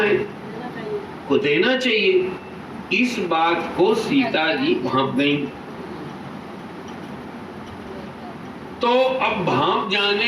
को देना चाहिए। इस बात को सीता जी भांप गई। तो अब भांप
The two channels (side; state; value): both; identical; correlation 1.00